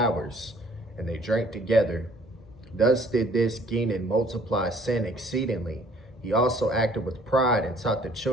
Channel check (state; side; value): normal; both; correlation 0.57